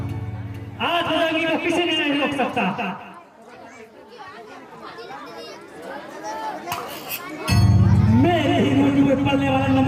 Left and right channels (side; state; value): both; identical; correlation 1.00